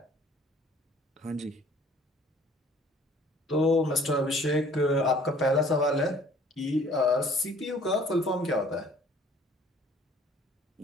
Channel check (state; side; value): normal; both; correlation 0.54